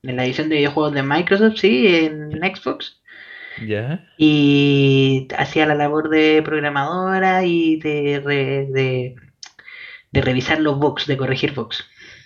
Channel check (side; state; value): both; identical; correlation 1.00